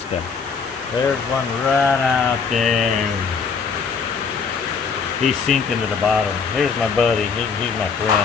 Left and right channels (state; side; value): quieter; right; 5.6 dB